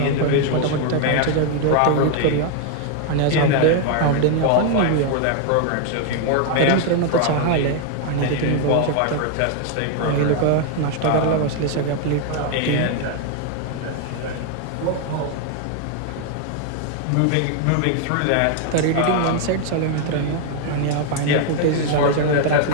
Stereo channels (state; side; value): different; both; correlation 0.00